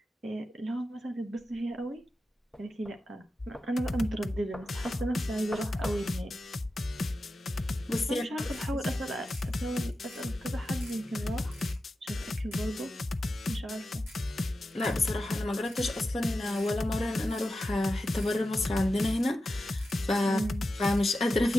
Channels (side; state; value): both; normal; correlation 0.91